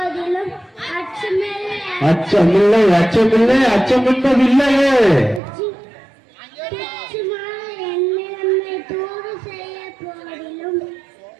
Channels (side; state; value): left; drops out; at 5.4 s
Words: அச்சமில்லை அச்சமில்லை அச்சமில்லை அச்சமென்பது இல்லையே, துச்சமாய் என்னை தூது செய்ய போதிலும்